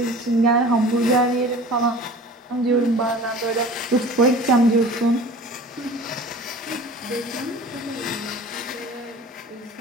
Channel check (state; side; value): normal; both; correlation 0.42